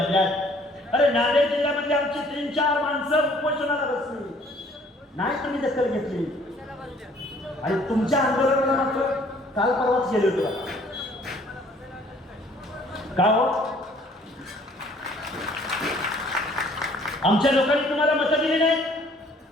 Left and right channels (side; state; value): both; normal; correlation 0.58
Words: अरे नांदेड जिल्ह्यामध्ये आमची 3-4 माणसं उपोषणाला बसली नाही, तुम्ही दखल घेतली. आणि तुमच्या आंदोलनाला मात्र काल परवाच गेले होते का हो? आमच्या लोकांनी तुम्हाला मतं दिली नाही.